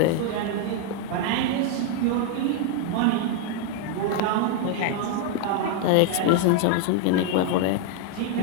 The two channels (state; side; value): different; both; correlation 0.00